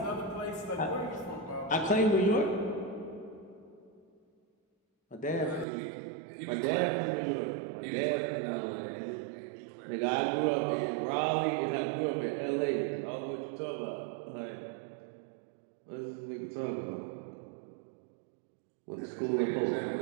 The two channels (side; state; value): left; drops out; at 5.7 s